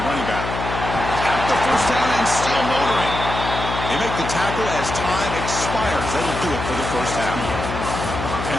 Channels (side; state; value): left; noise; hum, 5 dB below the sound